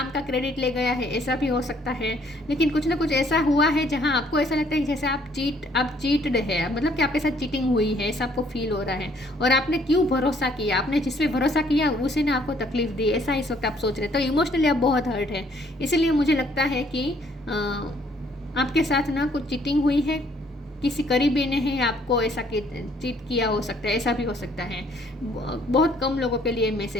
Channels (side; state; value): both; normal; correlation 0.63